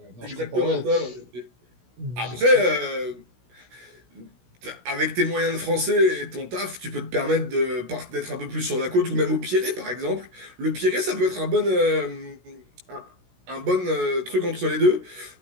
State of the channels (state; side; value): late; left; 16 ms